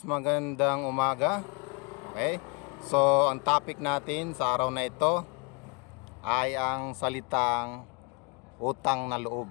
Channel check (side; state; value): right; quieter; 32.4 dB